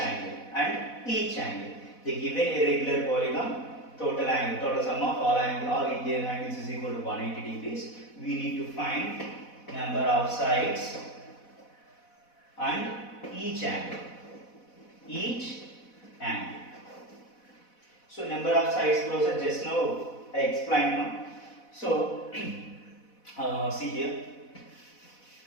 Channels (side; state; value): right; late; 4.1 ms